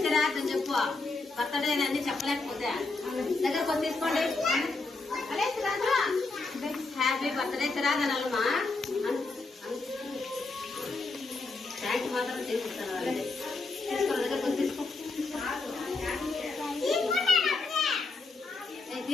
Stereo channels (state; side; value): quieter; right; 3.7 dB